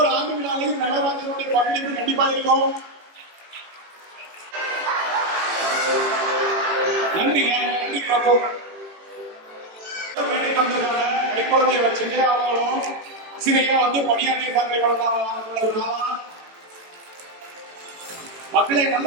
ஆண்டு விழாவில் நடராஜனுடைய பங்களிப்பு கண்டிப்பா இருக்கும். நன்றிங்க. நன்றி பிரபு. கை குழந்தைய வச்சுட்டு அவங்களும் ஆசிரியரா வந்து பணியாற்றிய மக்களை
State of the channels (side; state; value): left; late; 18 ms